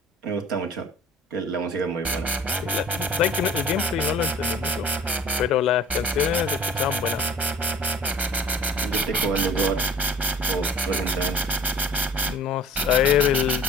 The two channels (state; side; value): normal; both; correlation 0.48